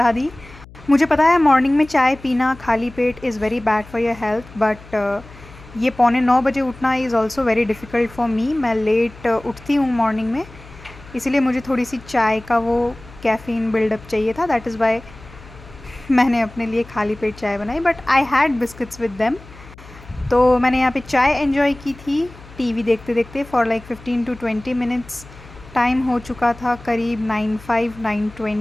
दी। मुझे पता है मॉर्निंग में चाय पीना खाली पेट is very bad for your health, but ये 9:45 उठना is also very difficult for me. मैं लेट उठती हूँ मॉर्निंग में, इसीलिए मुझे थोड़ी सी चाय का वो कैफ़ीन बिल्डअप चाहिए था। दैट इज़ वाई मैंने अपने लिए खाली पेट चाय बनाई, but I had biscuits with them. तो मैंने यहाँ पे चाय एंजॉय की थी टीवी देखते देखते for like 15 to 20 minutes. Time हो चुका था करीब 9:05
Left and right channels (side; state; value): left; noise; hum, 20 dB below the sound